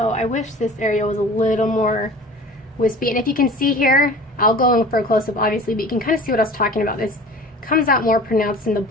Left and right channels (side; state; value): both; normal; correlation 0.42